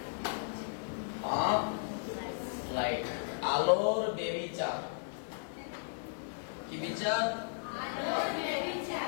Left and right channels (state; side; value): silent; right; digital silence